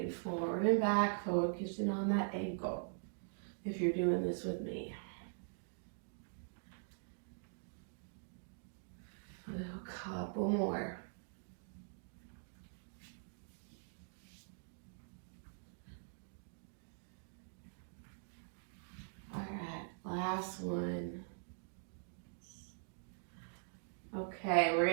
forward and back, focusing on that ankle. If you're doing this with me. A couple more. All right, last one. Okay, we're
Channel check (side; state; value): left; silent; digital silence